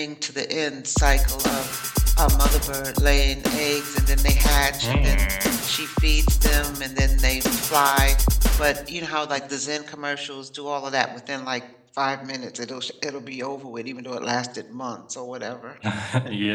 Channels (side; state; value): both; identical; correlation 1.00